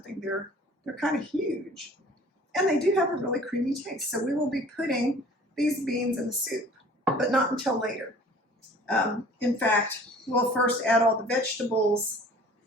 They're kind of huge. And they do have a really creamy taste. So we will be putting these beans in the soup, but not until later. In fact, we'll first add all the vegetables,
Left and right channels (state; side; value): normal; both; correlation 0.49